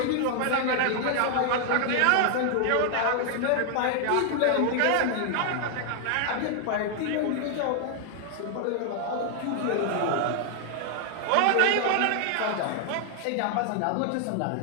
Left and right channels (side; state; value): both; different; correlation 0.00